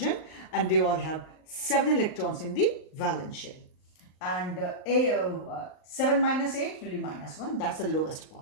and they all have 7 electrons in the valence shell. And 7 minus 8 will be minus 1. That's the lowest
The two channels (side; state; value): right; late; 39 ms